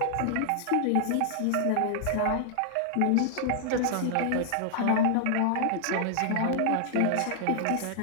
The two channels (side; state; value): both; different; correlation 0.00